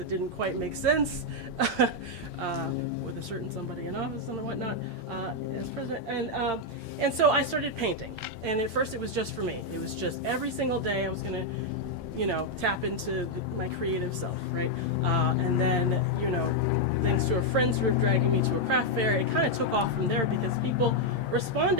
didn't quite make sense with a certain somebody in office and whatnot as president. And so I started painting. And at first it was just for me. It was just every single day I was going to, tap into my creative self, right? And then, thanks to friends who were dragging me to a craft fair, it kind of took off from there because people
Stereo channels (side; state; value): right; late; 8.7 ms